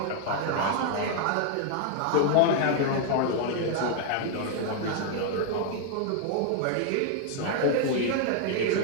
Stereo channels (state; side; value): different; both; correlation 0.00